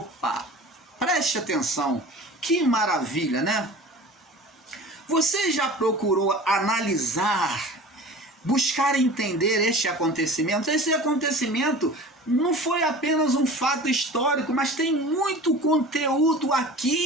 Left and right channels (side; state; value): both; normal; correlation 0.39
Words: Preste atenção, que maravilha, né? Você já procurou analisar, buscar entender este acontecimento? Esse acontecimento não foi apenas um fato histórico, mas tem muito conteúdo